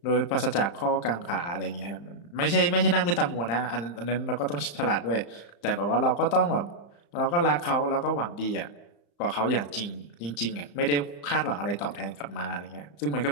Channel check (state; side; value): late; right; 35 ms